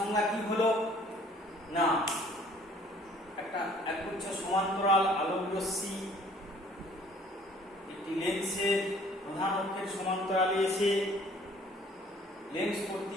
কি হলো না, একটা একগুচ্ছ সমান্তরাল আলোক রশ্মি একটি লেন্সের প্রধান অক্ষের সমান্তরালে এসে লেন্স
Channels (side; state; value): both; normal; correlation 0.56